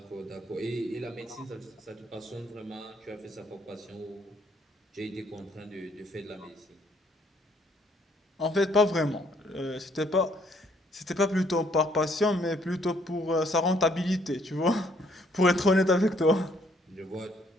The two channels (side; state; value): both; normal; correlation 0.66